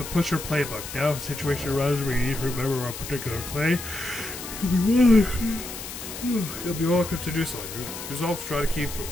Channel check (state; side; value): noise; left; hiss, 9 dB below the sound